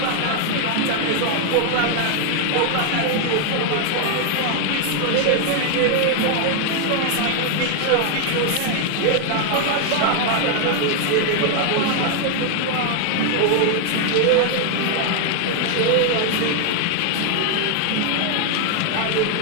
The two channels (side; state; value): both; different; correlation 0.00